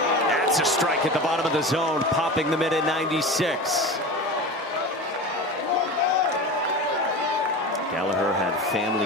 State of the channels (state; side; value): normal; both; correlation 0.30